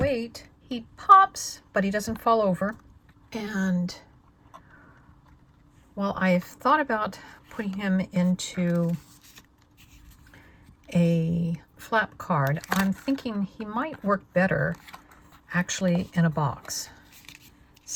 he pops, but he doesn't fall over. And while I've thought about putting him into a flap card, I'm thinking he might work better actually in a box.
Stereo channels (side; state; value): both; identical; correlation 1.00